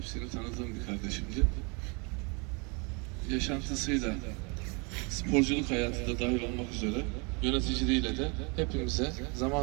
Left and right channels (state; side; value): quieter; left; 31.7 dB